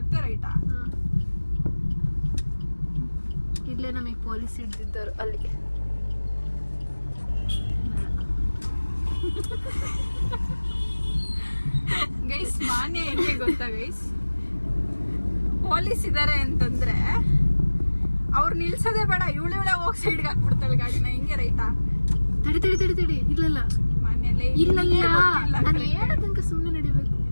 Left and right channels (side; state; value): both; inverted; correlation -1.00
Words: ರೈಟಾ? ಇಲ್ಲೇ ನಮಗೆ ಪೊಲೀಸ್ ಹಿಡ್ದಿದ್ದರು ಅಲ್ಲಿ. ಗೈಸ್ ಮಾನ್ಯ ಹೆಂಗೆ ಗೊತ್ತಾ ಗೈಸ್? ಪೊಲೀಸ್ ಇದಾರೆ ಅಂತಂದ್ರೆ ಅವ್ರು ನಿಲ್ಸೋದೇ ಬೇಡ, ಇವಳೆ ಹೋಗಿ ಸೈಡ್ಗೆ ಹಾಕ್ಬಿಡ್ತಾಳೆ ಗಾಡಿನ. ಹಿಂಗೆ ರೈಟಾ? ತಡಿ. ಇಲ್ಲಲ್ಲ ಮಾನ್ಯಲೇ ಇಲ್ಲ, ನಾನು ಹೇಳೋ ತನಕ ಸುಮ್ಮನೆ ನಡಿಬೇಕು.